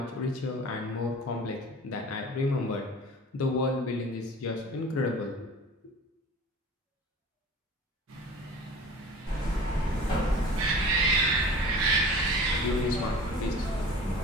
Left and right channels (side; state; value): both; normal; correlation 0.41